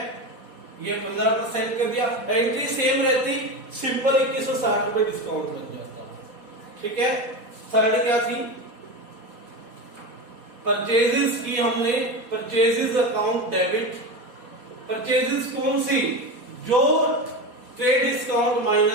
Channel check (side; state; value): left; late; 4.2 ms